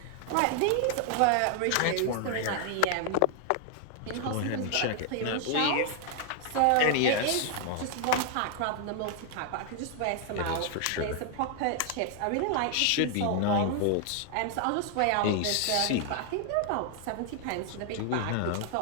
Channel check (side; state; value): both; different; correlation 0.00